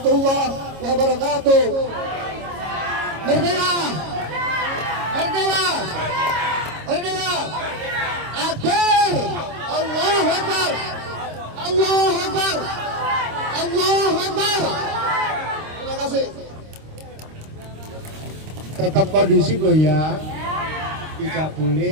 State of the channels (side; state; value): left; late; 26 ms